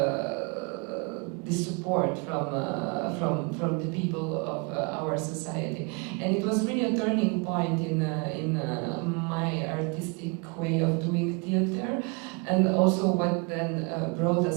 support from the people of our society? And it was really a turning point in my artistic way of doing theater, and also what then brought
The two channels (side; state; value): left; quieter; 31.1 dB